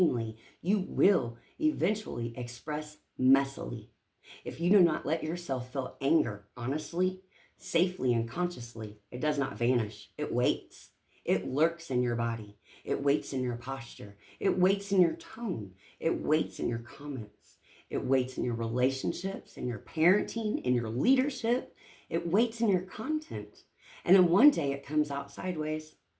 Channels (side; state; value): both; identical; correlation 1.00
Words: you will eventually express messily. If you do not let yourself feel anger honestly, safely, and consciously, it does not vanish. It waits. It lurks in your body. It waits in your posture. It waits in your tone. It waits in your comments. It waits in your relationships, in your parenting, in your leadership. It waits in your content. And then one day it comes out sideways